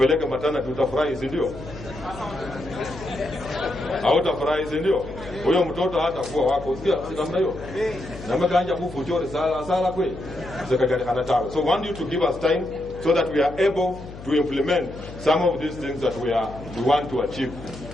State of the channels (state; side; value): noise; left; hum, 14 dB below the sound